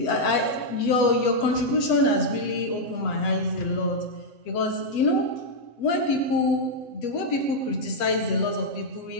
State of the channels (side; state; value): right; late; 7.7 ms